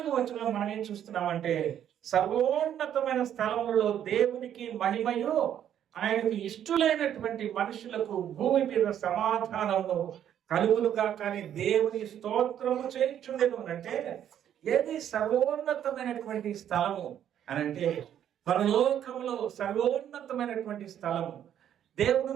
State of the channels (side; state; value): left; quieter; 10.1 dB